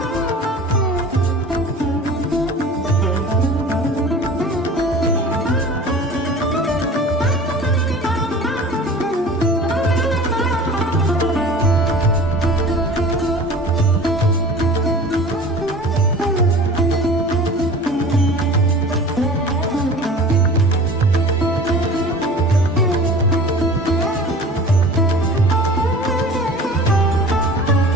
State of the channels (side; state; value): both; normal; correlation 0.41